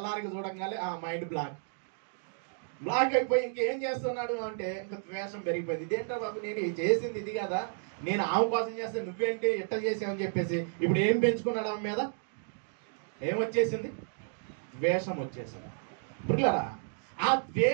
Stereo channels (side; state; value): left; silent; digital silence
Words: చూడంగానే మైండ్ బ్లాక్ అయిపోయి ఇంకేం చేస్తున్నాడు అంటే ఇంకా ద్వేషం పెరిగిపోయింది. ఇదేంటో బాబు, నేను చేసింది ఇది కదా, నేను ఆమె కోసం చేస్తే నువ్వేంటి ఇట్ట చేసావని చెప్పేసి ఇప్పుడు ఏం పెంచుకున్నాడు ఆమె మీద? ఏమొచ్చేసింది? ద్వేషం వచ్చేసింది. పిల్లరా, ఆ